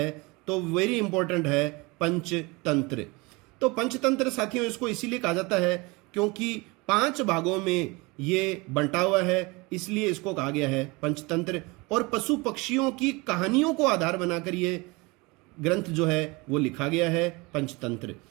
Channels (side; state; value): left; quieter; 25.3 dB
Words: तो वेरी इंपॉर्टेंट है पंचतंत्र। तो पंचतंत्र साथियों इसको इसीलिए कहा जाता है क्योंकि 5 भागों में ये बंटा हुआ है, इसलिए इसको कहा गया है पंचतंत्र। और पशु पक्षियों की कहानियों को आधार बनाकर ये ग्रंथ जो है वो लिखा गया है पंचतंत्र।